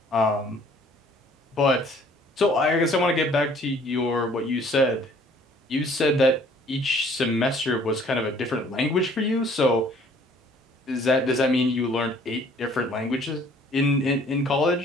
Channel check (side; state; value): both; normal; correlation 0.57